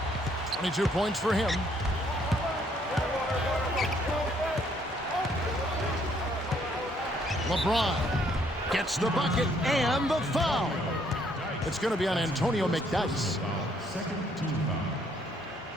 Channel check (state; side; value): normal; both; correlation 0.67